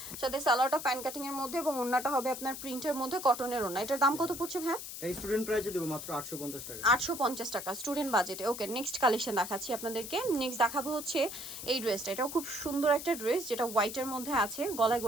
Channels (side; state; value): left; noise; hiss, 9 dB below the sound